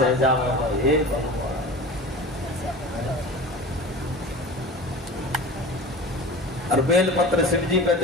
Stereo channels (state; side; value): normal; both; correlation 0.34